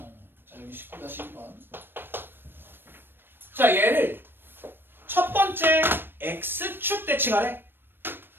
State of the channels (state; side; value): late; left; 0.099 ms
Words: 자, 여기 19-1번. 자, 얘를 첫 번째 x축 대칭하래.